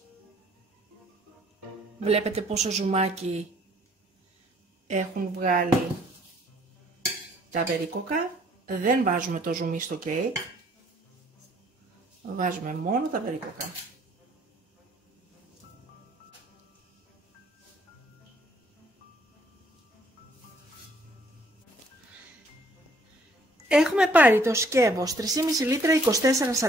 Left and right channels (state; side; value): normal; both; correlation 0.62